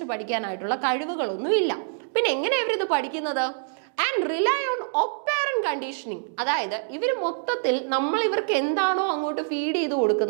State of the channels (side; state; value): left; silent; digital silence